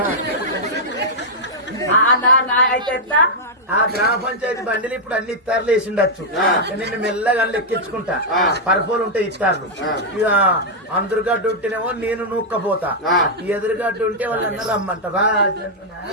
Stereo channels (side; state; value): both; normal; correlation -0.05